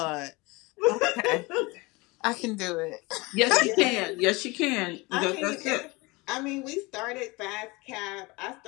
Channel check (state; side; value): quieter; right; 24.4 dB